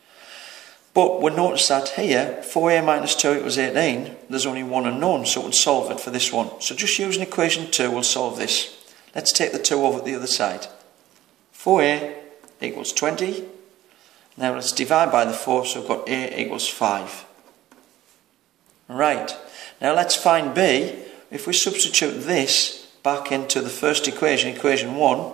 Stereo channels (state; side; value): quieter; left; 14.4 dB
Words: But we'll notice that here, 4a minus 2 equals 18, there's only one unknown, so we'll solve it for this one. So just using equation 2, we'll solve this. Let's take the 2 over to the other side. 4a equals 20. Now let's divide by the 4, so we've got a equals 5. Right, now let's find b. If we substitute this back into the first equation, equation 1,